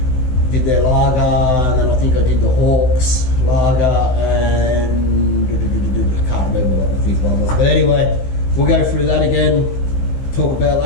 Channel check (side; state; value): right; late; 16 ms